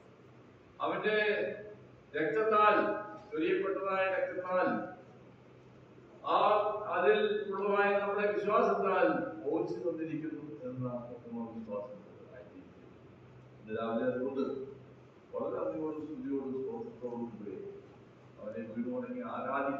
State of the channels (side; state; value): both; identical; correlation 1.00